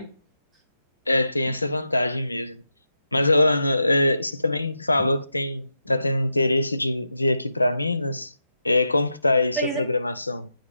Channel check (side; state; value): both; inverted; correlation -0.88